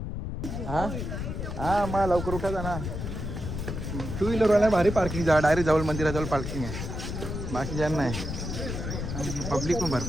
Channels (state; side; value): noise; left; rumble, 5 dB below the sound